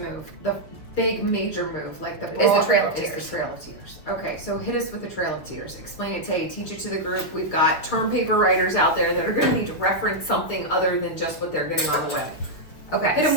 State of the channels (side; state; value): right; late; 6.7 ms